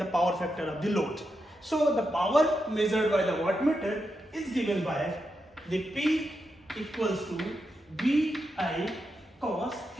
power factor of the load. So the power measured by the voltmeter is given by the P equals to VI cos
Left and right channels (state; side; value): normal; both; correlation 0.86